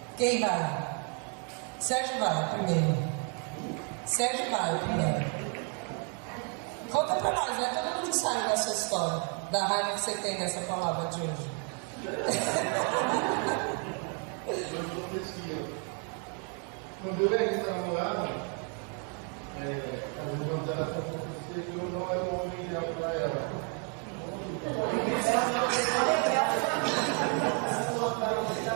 Quem vai? Sérgio vai primeiro. Sérgio vai primeiro. Conta pra nós, né? Todo mundo sabe dessa história, da raiva que você tem dessa palavra de hoje. Quando eu era namorada, as irmãs dela falaram que eu não era um homem ideal para ela.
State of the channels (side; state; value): left; quieter; 39.4 dB